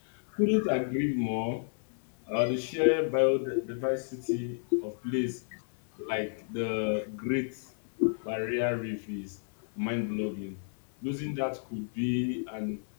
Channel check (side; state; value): right; silent; 57 dB below the other